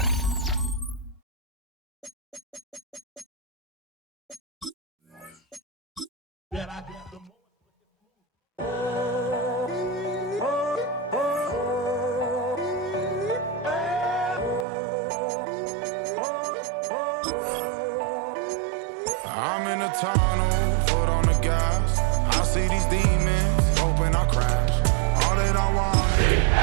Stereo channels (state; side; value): drops out; left; at 14.7 s